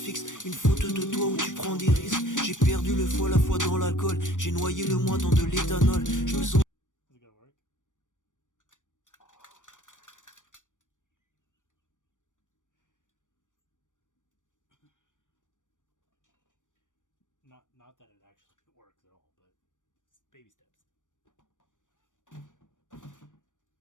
Une photo de toi où tu prends des risques. J'ai perdu le foie, la foi dans l'alcool. J'ai noyé le moi dans de l'éthanol. Je me sens... Not that it actually works at all, but it's baby steps. My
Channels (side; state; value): right; late; 0.87 ms